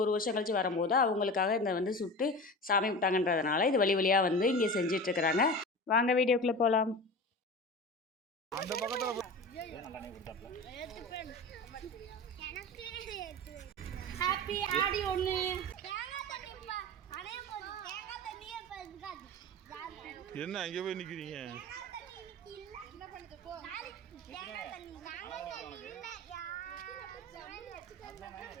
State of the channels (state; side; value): normal; both; correlation 0.31